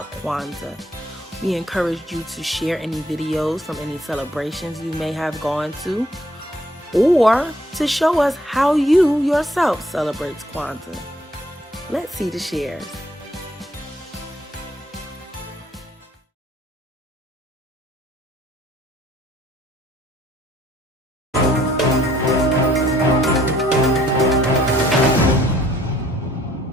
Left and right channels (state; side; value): normal; both; correlation 0.63